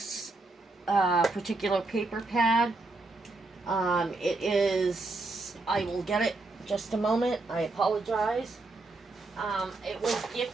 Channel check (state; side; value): quieter; left; 3.3 dB